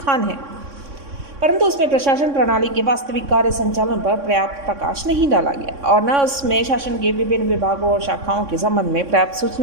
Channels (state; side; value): late; left; 3.6 ms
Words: है, परंतु उसमें प्रशासन प्रणाली के वास्तविक कार्य संचालन पर पर्याप्त प्रकाश नहीं डाला गया और न उसमें शासन के विभिन्न विभागों और शाखाओं के संबंध में पर्याप्त